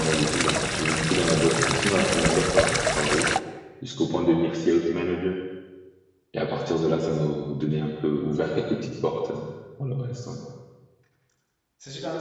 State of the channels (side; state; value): both; identical; correlation 1.00